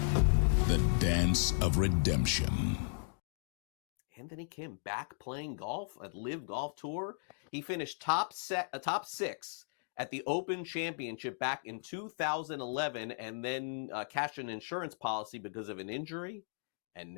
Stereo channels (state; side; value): silent; right; digital silence